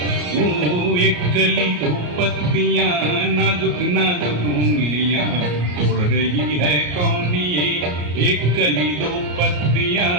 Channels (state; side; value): late; left; 34 ms